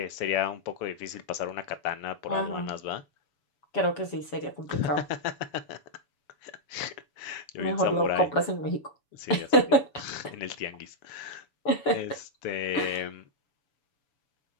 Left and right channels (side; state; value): right; late; 7.0 ms